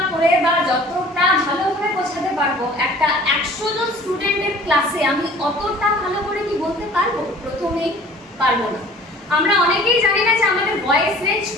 করে বা যতটা ভালোভাবে বোঝাতে পারবো, একটা 100 জন স্টুডেন্টের ক্লাসে আমি অতটা ভালো করে কি বলতে পারবো? প্রথমেই পারবো না। আমরা অনেকেই জানি না যে আমাদের ভয়েস রেঞ্জ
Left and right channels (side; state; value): both; normal; correlation 0.48